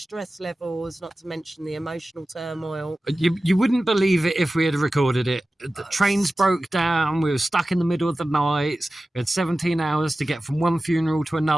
levels, not to mention the emotional turmoil. You wouldn't believe it if we had recorded it. The trains broke down. We were stuck in the middle of the night. We had 17 hours to get from one funeral to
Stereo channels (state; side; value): normal; both; correlation 0.95